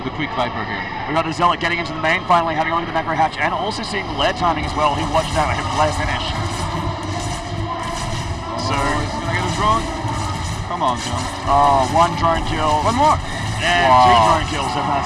quick Viper here. We got the Zealot getting into the main, finally having a look at the macro hatch, and also seeing the lair timing as well. He watched out him lair finish. So he's going to get a drone. Come on, John. Oh, 1 drone kill. One more. And 2 drone kills from that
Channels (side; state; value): both; identical; correlation 1.00